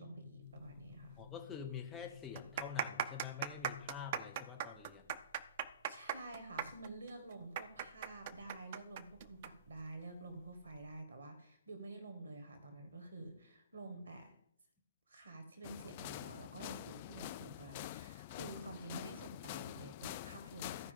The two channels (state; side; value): inverted; both; correlation -0.39